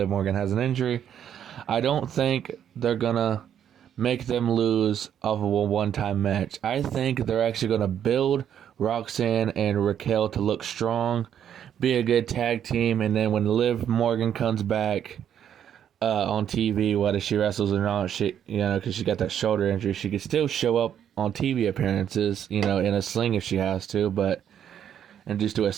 Morgan has an injury, I don't think they're going to make them lose off of a one-time match. I think they're actually going to build Roxanne and Raquel to look strong, be a good tag team, and then when Liv Morgan comes back on TV, whether she wrestles or not, because she got that shoulder injury, she could still show up on TV appearances, in a sling if she has to, and just do a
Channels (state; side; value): quieter; left; 9.4 dB